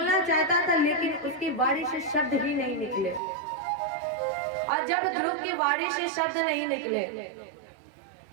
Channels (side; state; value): left; drops out; at 3.2 s